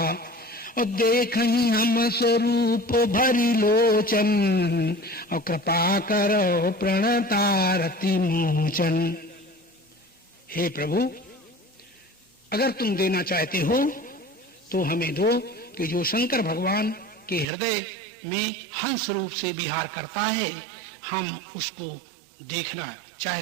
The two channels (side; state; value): left; drops out; at 17.4 s